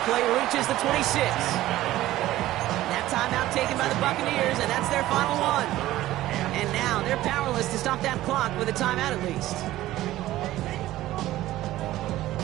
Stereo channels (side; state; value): left; quieter; 15.3 dB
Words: reaches the 26. That timeout taken by the Buccaneers, and that's their final one. And now they're powerless to stop that clock with a timeout at least.